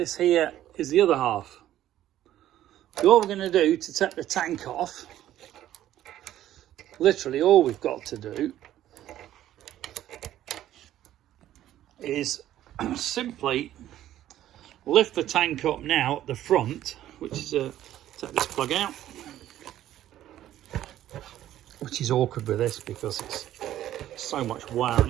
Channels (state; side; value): quieter; left; 12.7 dB